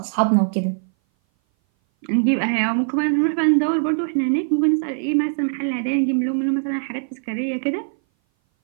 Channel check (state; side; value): silent; left; 59 dB below the other